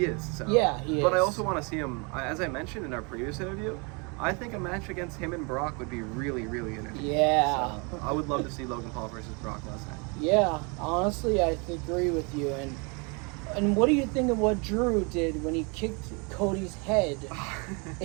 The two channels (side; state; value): left; quieter; 32.0 dB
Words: is. So. Yeah, he is. But I also want to see him, as I mentioned in our previous interview, I think a match against him and Brock would be really, really entertaining. Yeah. So I would love to see Logan Paul versus Brock Lesnar. Yeah, honestly, I agree with you. And what do you think of what Drew did when he kicked Cody's head